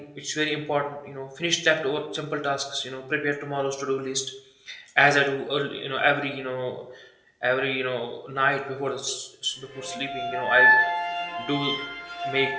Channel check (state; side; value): identical; both; correlation 1.00